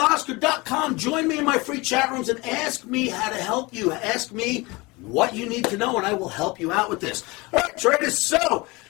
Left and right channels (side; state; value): right; quieter; 24.3 dB